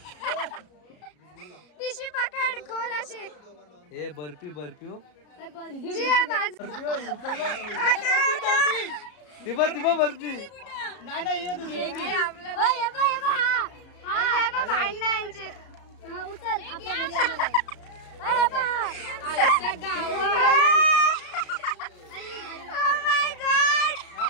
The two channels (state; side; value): late; right; 33 ms